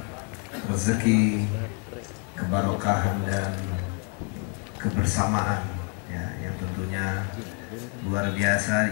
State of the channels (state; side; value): quieter; right; 38.2 dB